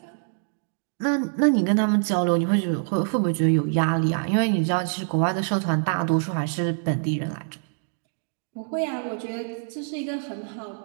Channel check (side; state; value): left; silent; digital silence